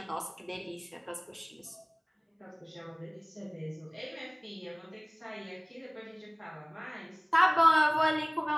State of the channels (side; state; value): both; identical; correlation 1.00